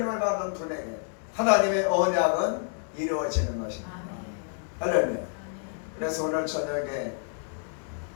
받는 분에게 하나님의 언약은 이루어지는 것입니다. 할렐루야. 그래서 오늘 저녁에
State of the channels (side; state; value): right; silent; digital silence